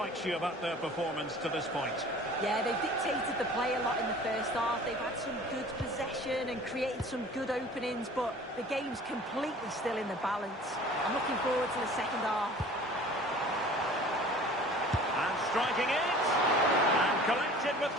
you about their performance to this point? Yeah, they've dictated the play a lot in the first half. They've had some good possession and created some good openings, but the game's completely still in the balance. I'm looking forward to the second half. And striking it! And collected with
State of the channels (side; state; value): both; normal; correlation 0.46